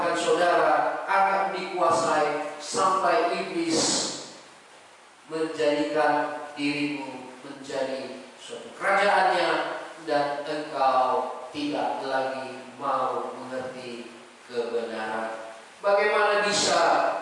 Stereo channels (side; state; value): both; identical; correlation 1.00